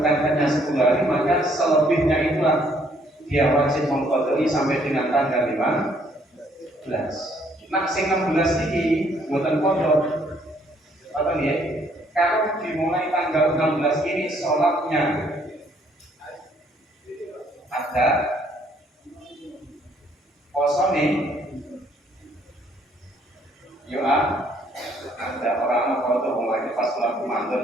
hanya 10 hari, maka selebihnya itulah dia wajib mengqadai sampai dengan tanggal 15. Nah, sing 16 ini buatan kodok. Apa nih? Kalau dimulai tanggal 16 ini sholatnya ada, poso nih, ada orang kodok mulai pas bulan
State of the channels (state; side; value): normal; both; correlation 0.66